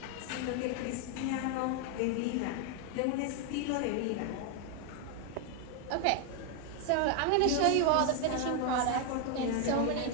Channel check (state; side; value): different; both; correlation 0.01